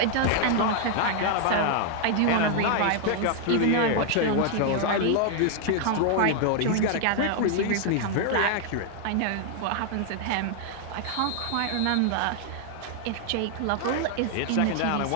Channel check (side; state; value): both; different; correlation 0.00